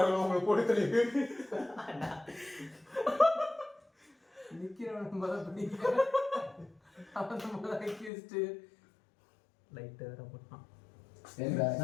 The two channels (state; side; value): drops out; right; at 8.1 s